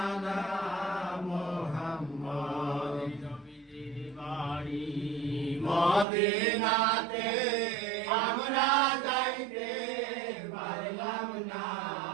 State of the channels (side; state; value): left; drops out; at 6.1 s